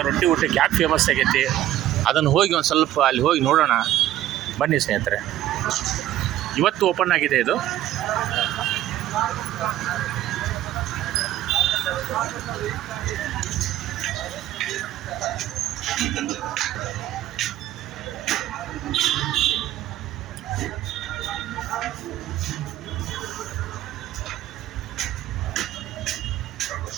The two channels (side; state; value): left; quieter; 13.5 dB